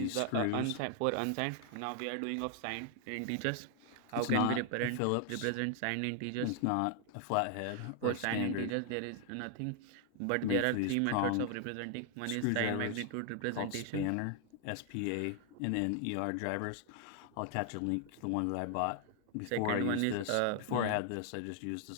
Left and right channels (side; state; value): both; different; correlation 0.00